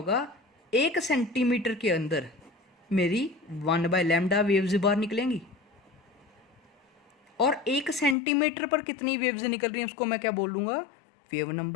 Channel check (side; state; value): right; drops out; at 8.2 s